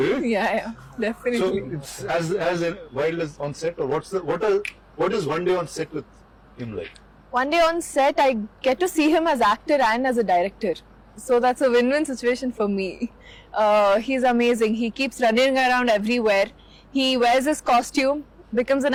yeah, So definitely. it's as wild as on set, or what is one day on set with him like? One day on set, I get to see him as actor and as a director. So that's a win-win situation for me. He's amazing. He keeps running around everywhere. He wears his costume, becomes an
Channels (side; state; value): both; identical; correlation 1.00